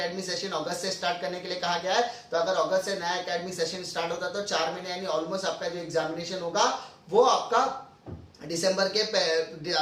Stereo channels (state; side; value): identical; both; correlation 1.00